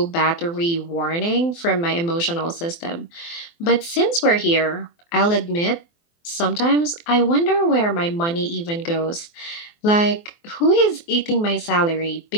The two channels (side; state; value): right; late; 24 ms